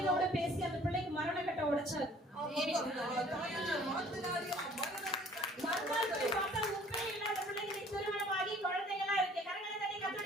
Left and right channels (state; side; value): normal; both; correlation 0.55